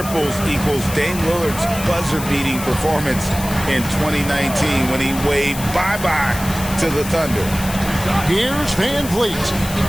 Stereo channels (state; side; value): noise; left; hiss, 10 dB below the sound